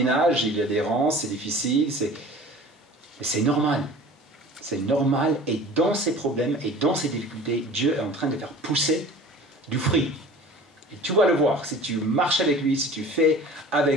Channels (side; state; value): both; normal; correlation 0.42